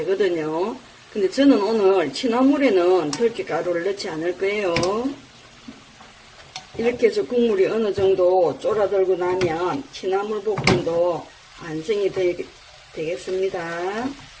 근데 저는 오늘 취나물에는 들깨가루를 넣지 않을 거예요. 이렇게 해서 국물이 어느 정도 쫄아들고 나면 취나물 볶음도 완성이 되겠습니다.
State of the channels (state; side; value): identical; both; correlation 1.00